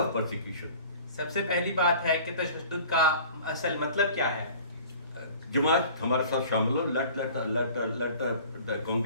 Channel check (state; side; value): inverted; both; correlation -0.46